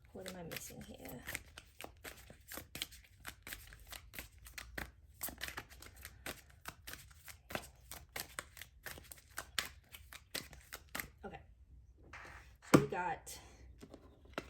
What am I missing here? Okay. So we got,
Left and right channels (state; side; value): identical; both; correlation 1.00